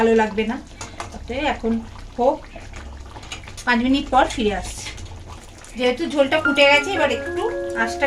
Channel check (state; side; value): identical; both; correlation 1.00